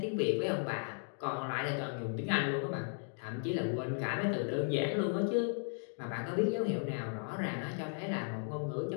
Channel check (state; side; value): silent; right; 54 dB below the other